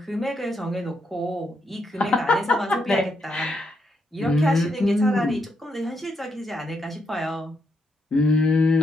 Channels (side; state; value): both; normal; correlation 0.79